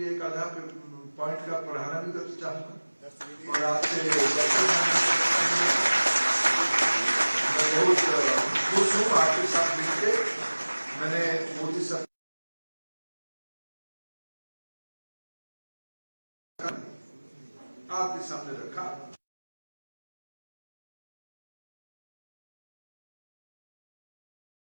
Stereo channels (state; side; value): inverted; both; correlation -1.00